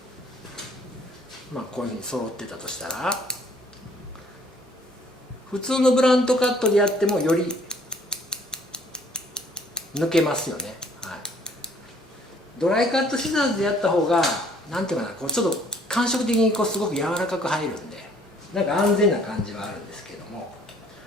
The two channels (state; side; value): normal; both; correlation 0.60